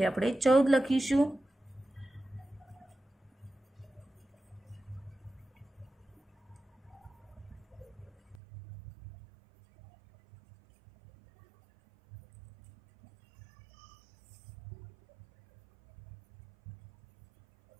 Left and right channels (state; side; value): drops out; left; at 8.4 s